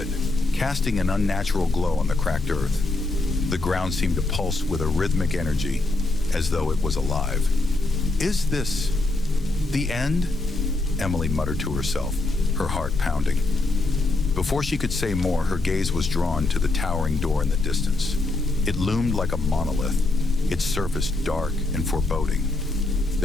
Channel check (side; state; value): right; quieter; 3.0 dB